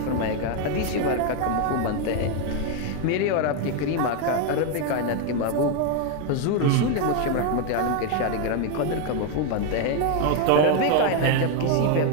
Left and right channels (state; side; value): different; both; correlation 0.01